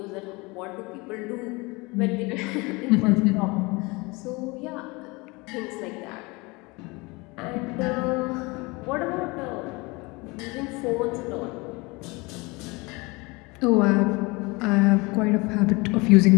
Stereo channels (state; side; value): quieter; right; 25.3 dB